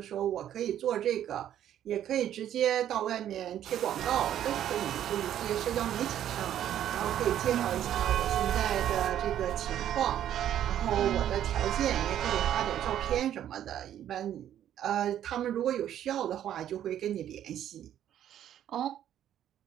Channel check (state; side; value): quieter; left; 10.9 dB